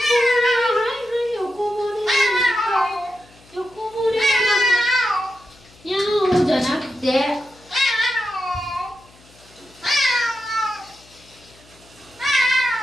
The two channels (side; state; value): left; noise; hum, 27 dB below the sound